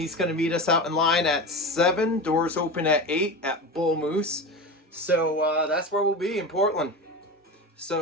going to meet us out in line at 7, doors open at 8 at Bull Moose. So that's where we'll be, in Portland.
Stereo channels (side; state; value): both; normal; correlation 0.26